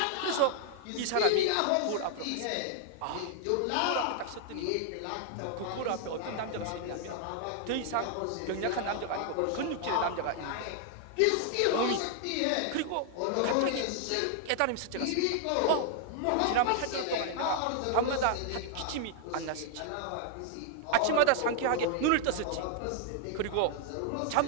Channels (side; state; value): both; different; correlation 0.00